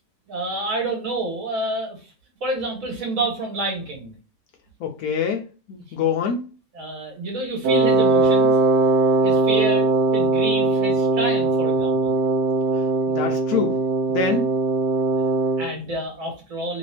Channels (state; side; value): normal; both; correlation 0.28